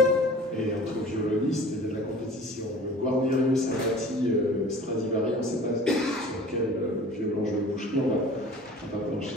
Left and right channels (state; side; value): normal; both; correlation 0.44